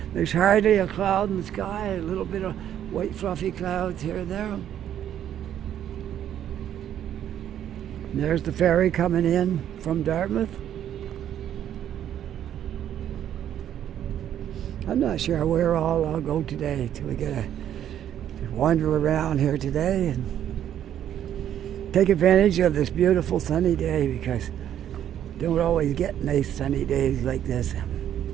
There's hardly a cloud in the sky, a little bit of white fluffy clouds here and there. And there's the ferry coming in from Dartmouth. I'm not sure where all I'll go today till we get to wander around here today and take advantage of this beautiful sunny day, because don't always get nice sunny days like this.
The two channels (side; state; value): left; quieter; 10.4 dB